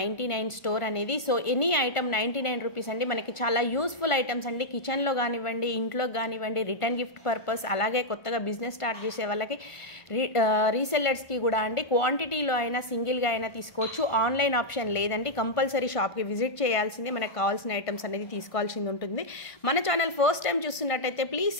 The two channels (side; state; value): right; late; 1.5 ms